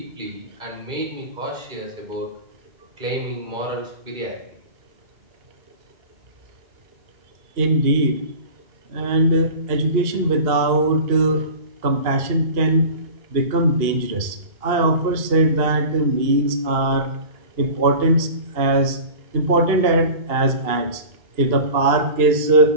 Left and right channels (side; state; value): left; late; 2.8 ms